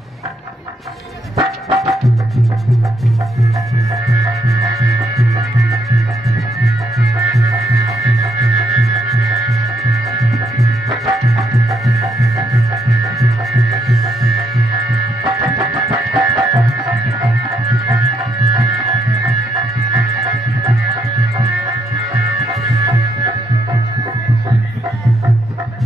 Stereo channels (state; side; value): normal; both; correlation 0.74